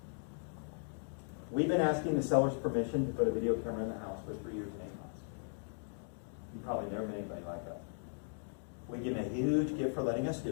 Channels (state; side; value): silent; right; digital silence